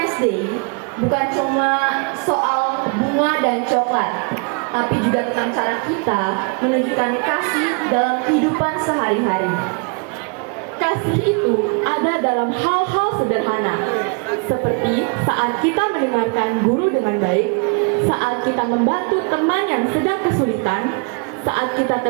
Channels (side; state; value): left; quieter; 35.1 dB